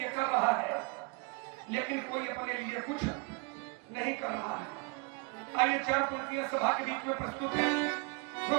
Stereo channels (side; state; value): left; quieter; 28.8 dB